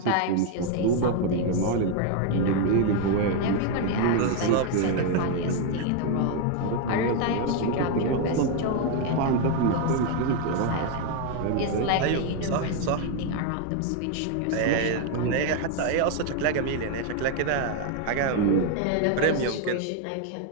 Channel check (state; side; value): different; both; correlation 0.01